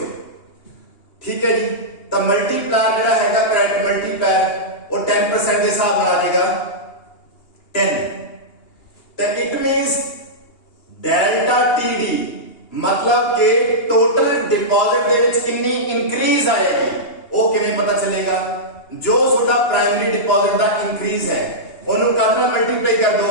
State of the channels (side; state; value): right; late; 2.8 ms